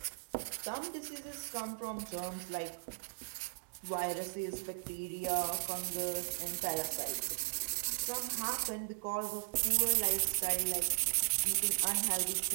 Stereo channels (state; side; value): silent; left; digital silence